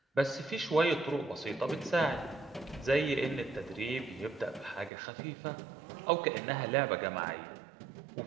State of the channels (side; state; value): left; drops out; at 4.9 s